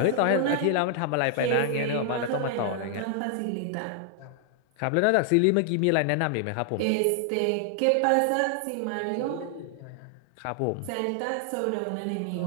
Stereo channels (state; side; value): different; both; correlation 0.00